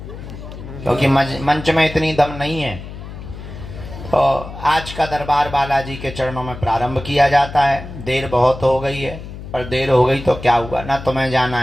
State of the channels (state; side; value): noise; left; hum, 12 dB below the sound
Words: क्योंकि मंच में इतनी दम नहीं है। तो आज का दरबार बालाजी के चरणों में प्रारंभ किया जाता है। देर बहुत हो गई है, पर देर हो गई तो क्या हुआ, ना तुम्हें जाना